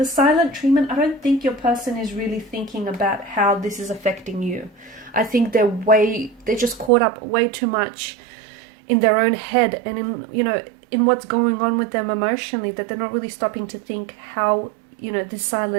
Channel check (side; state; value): left; drops out; at 6.9 s